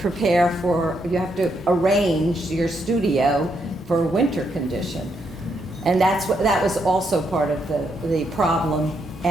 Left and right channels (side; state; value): both; normal; correlation 0.78